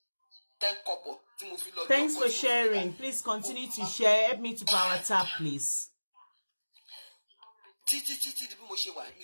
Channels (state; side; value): inverted; both; correlation -1.00